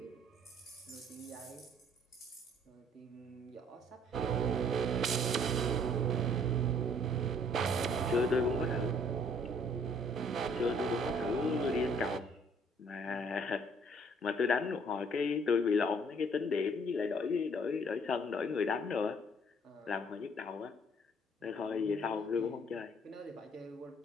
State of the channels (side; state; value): both; normal; correlation 0.60